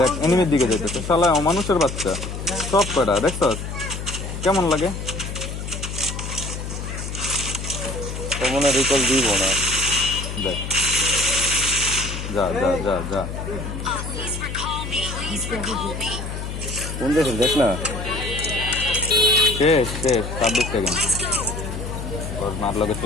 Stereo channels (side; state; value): left; noise; hum, 6 dB below the sound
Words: এনিমির দিকে যাইতেছে, শালা অমানুষের বাচ্চা। সব কয়টা দেখছস কেমন লাগে? মনে রিকল দিব না। দেখ যা যা যা যা Please recall me. Please recall me. কোন দেশে দেখ না। শেষ শেষ 26 সেকেন্ড Let's go. ওর মার লগে